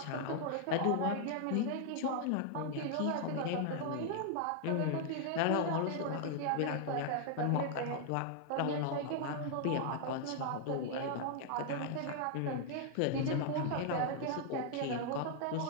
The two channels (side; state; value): both; different; correlation 0.00